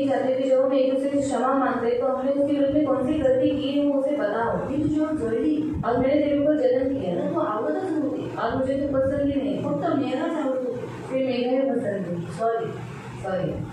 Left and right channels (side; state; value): both; identical; correlation 1.00